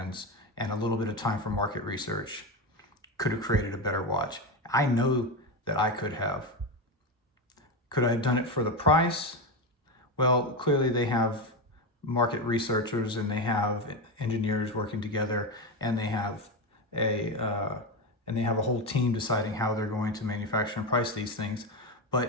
and a little bit of time for market research could have created a better watch. I know that I could have. Could I have done it for the price? Well, clearly they have market researchers and they have engineers working together, and they have a whole team deciding how they're going to manufacture and price these things.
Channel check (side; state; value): both; normal; correlation 0.15